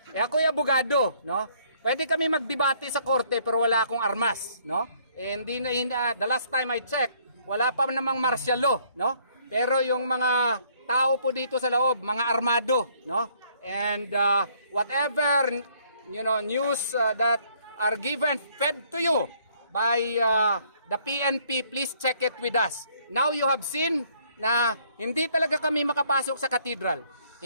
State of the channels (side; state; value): both; inverted; correlation -0.64